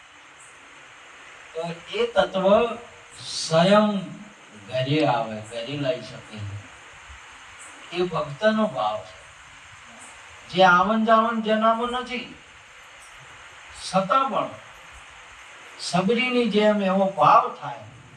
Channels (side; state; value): both; identical; correlation 1.00